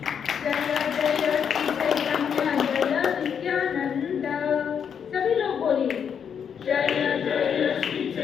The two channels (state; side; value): quieter; right; 7.6 dB